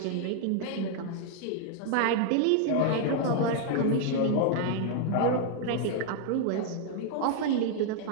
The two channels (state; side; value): different; both; correlation 0.00